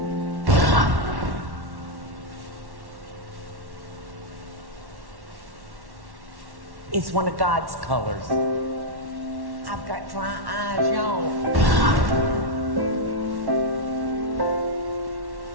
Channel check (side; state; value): left; late; 1.1 ms